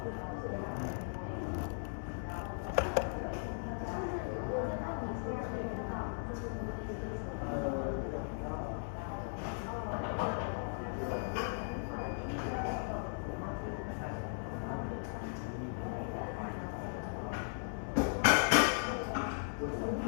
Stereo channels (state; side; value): silent; right; digital silence